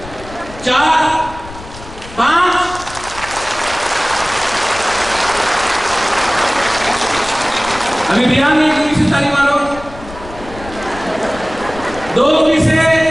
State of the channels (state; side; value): noise; left; rumble, 16 dB below the sound